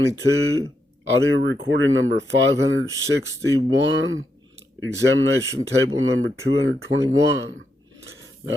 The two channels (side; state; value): both; normal; correlation 0.82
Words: audio recording number 561, examination table number 221.